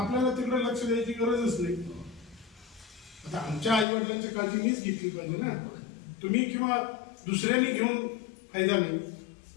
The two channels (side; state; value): right; drops out; at 3.9 s